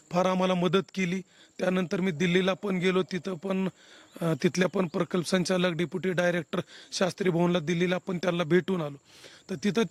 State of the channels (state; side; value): identical; both; correlation 1.00